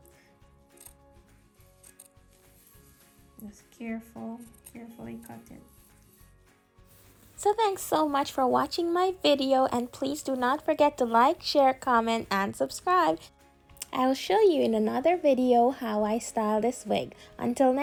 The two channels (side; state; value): both; identical; correlation 1.00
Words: Just carefully cut it. So thanks so much for watching my video, and please do not forget to like, share, comment, and subscribe. I'll show you in another video how I style this wig. Until